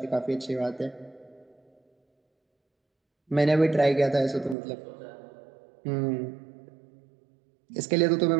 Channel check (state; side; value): drops out; left; at 4.5 s